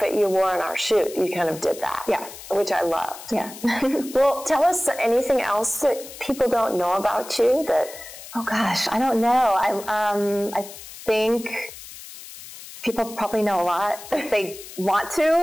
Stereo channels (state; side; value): noise; left; hiss, 15 dB below the sound